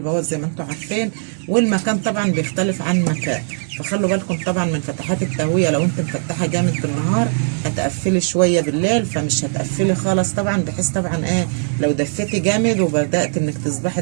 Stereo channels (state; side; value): silent; left; 59 dB below the other